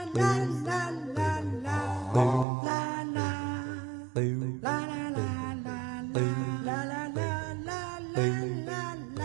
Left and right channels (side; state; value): left; drops out; at 2.5 s